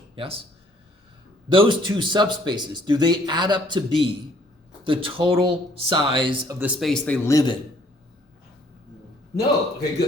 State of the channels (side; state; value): both; normal; correlation 0.62